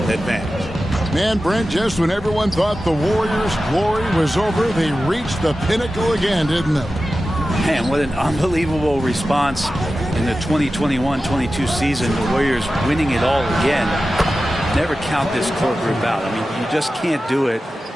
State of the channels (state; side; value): normal; both; correlation 0.94